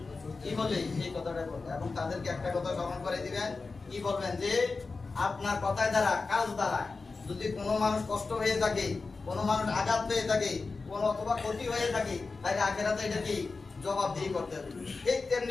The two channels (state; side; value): quieter; right; 4.1 dB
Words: কি বলে এই কথাটাই বলে এবং তাদেরকে একটা কথা স্মরণ করে দিবেন কি বলবেন যে আপনার কথায় দ্বারা কাজ দ্বারা যদি কোনো মানুষ কষ্ট হয়ে থাকে কোনো মানুষ আঘাত পেয়ে থাকে কোনো অথবা ক্ষতি হয়ে থাকে তাহলে আখেরাতে এটা কি জবাবদিহি করতে হবে ঠিক